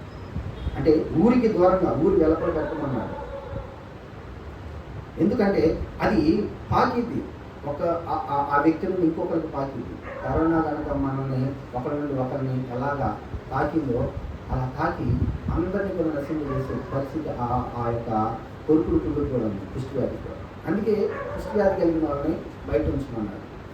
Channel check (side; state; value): both; identical; correlation 1.00